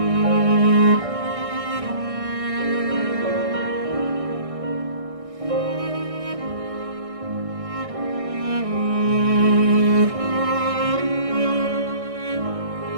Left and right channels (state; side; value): late; left; 1.6 ms